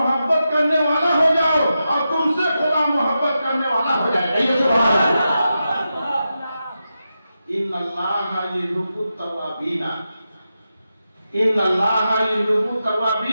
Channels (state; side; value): inverted; both; correlation -0.89